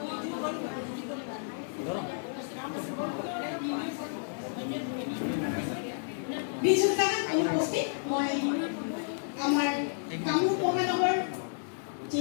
বিজু জামান অনুপস্থিত। মই আমাৰ কামৰূপ মহানগৰ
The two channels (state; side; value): silent; right; digital silence